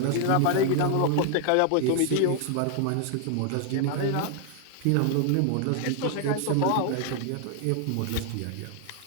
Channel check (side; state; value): both; different; correlation 0.00